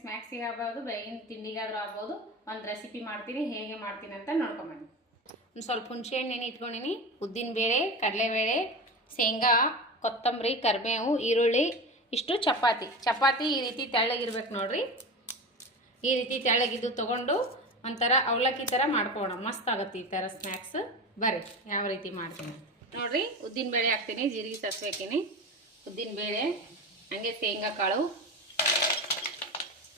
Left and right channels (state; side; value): normal; both; correlation 0.26